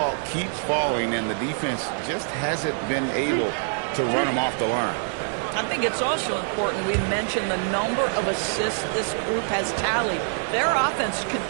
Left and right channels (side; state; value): left; silent; 60 dB below the other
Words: keeps falling, and the defense just hasn't been able to run them off the line. I think it's also important we mention the number of assists this group has tallied. Their offense